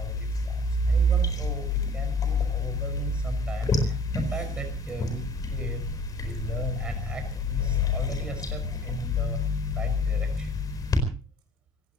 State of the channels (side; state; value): both; normal; correlation 0.50